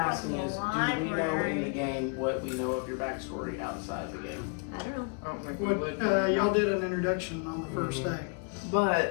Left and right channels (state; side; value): quieter; right; 36.2 dB